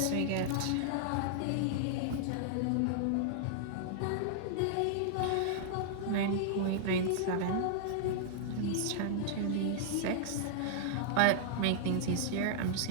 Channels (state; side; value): different; both; correlation -0.01